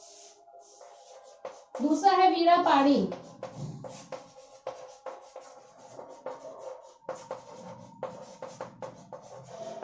दूसरा है वीणापाणी।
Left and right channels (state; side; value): identical; both; correlation 1.00